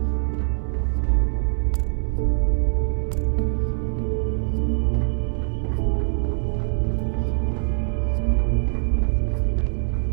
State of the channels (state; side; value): silent; left; 63 dB below the other